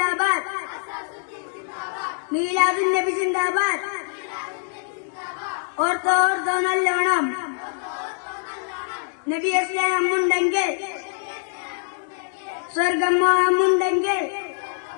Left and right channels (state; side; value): silent; right; 63 dB below the other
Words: മീലാദുൻ നബി സിന്ദാബാദ്. ഓർത്തോ ഓർത്തോ നല്ലോണം, നബിയെ സ്നേഹമുണ്ടെങ്കിൽ, സ്വർഗം മോഹമുണ്ടെങ്കിൽ,